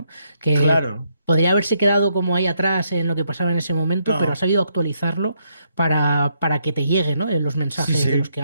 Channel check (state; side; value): inverted; both; correlation -0.76